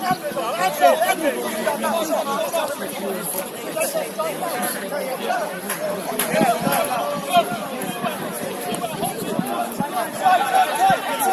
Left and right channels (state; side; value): identical; both; correlation 1.00